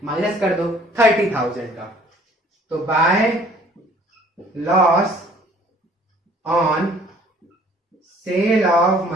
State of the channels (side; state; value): both; normal; correlation 0.55